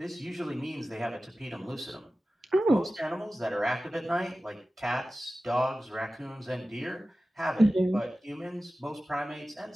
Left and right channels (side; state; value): both; normal; correlation 0.96